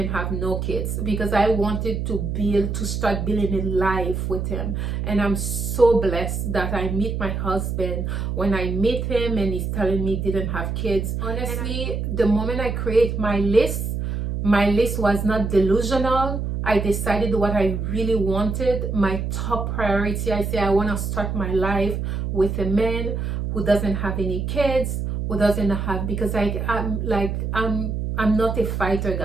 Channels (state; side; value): noise; right; hum, 2 dB below the sound